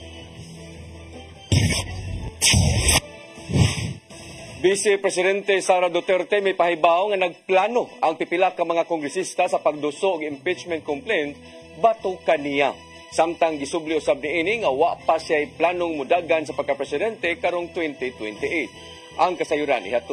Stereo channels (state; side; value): identical; both; correlation 1.00